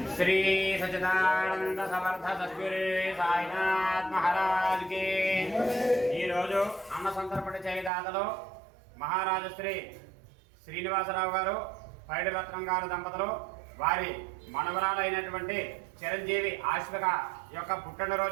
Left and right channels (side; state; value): left; drops out; at 7.9 s